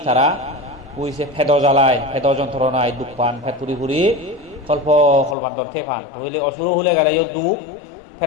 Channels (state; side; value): drops out; right; at 5.4 s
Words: তারা কইছে ফেদ জ্বালায় ফেদ যন্ত্রণায় দুঃখ পান ফেদ ফুরি কল্পান্তর থে পান হইলে অসুর হলে গেলেও দুঃখ